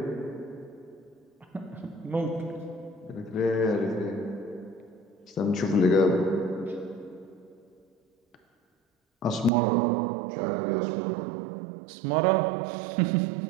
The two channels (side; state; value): left; drops out; at 9.5 s